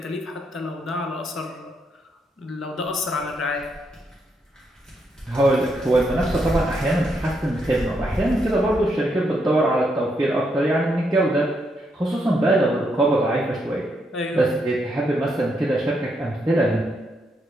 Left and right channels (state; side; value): normal; both; correlation 0.78